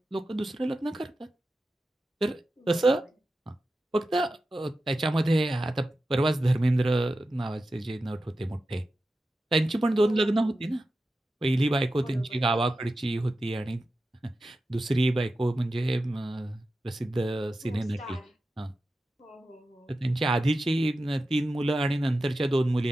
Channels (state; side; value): normal; both; correlation 0.92